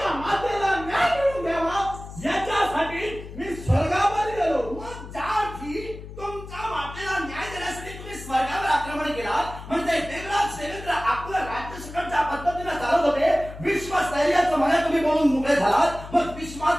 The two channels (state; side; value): noise; left; hum, 13 dB below the sound